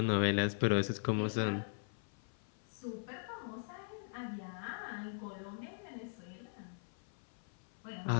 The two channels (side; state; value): right; silent; 51 dB below the other